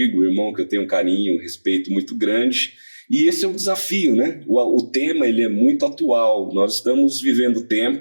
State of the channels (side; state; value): both; inverted; correlation -1.00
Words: irmão, que eu tenho um carinho, um respeito muito grande. E esse é um desafio, né? O tema ele é muito atual. Nós estamos vivendo